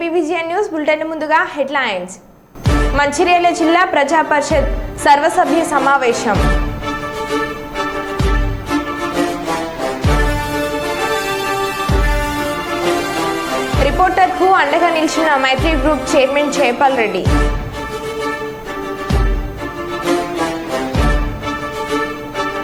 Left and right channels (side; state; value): both; identical; correlation 1.00